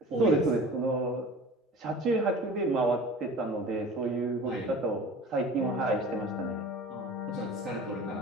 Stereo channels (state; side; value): normal; both; correlation 0.40